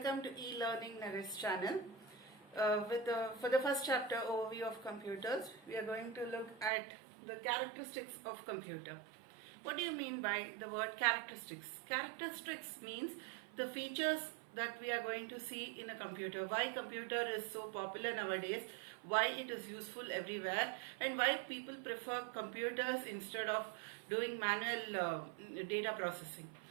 to e-learning Naresh channel. For the first chapter overview of computers, we are going to look at the characteristics of computer. What do you mean by the word characteristics? Characteristics means the features that we are going to see in a computer, why computer is so popular nowadays, why it is useful everywhere, and why people prefer computers instead of doing manual data processing.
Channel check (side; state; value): left; drops out; at 6.7 s